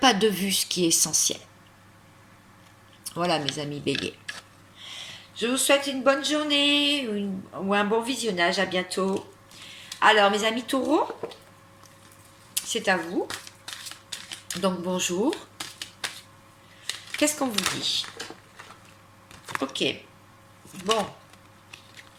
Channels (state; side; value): identical; both; correlation 1.00